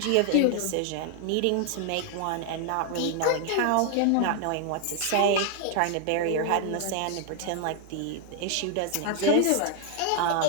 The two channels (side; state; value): both; different; correlation 0.00